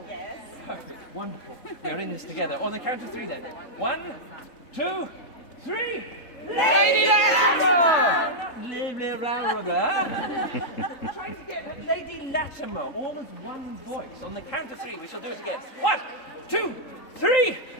Yes. Perfect, wonderful. We are in this together. On the count of 3 then. 1, 2, 3. Lady Latimer! Trying to get Lady Latimer, all as one voice. On the count of 3, we shall do it again. 1, 2, 3.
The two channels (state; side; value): late; right; 3.3 ms